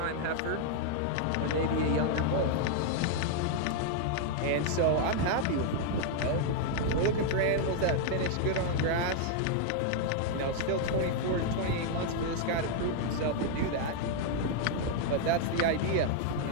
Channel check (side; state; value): both; different; correlation 0.00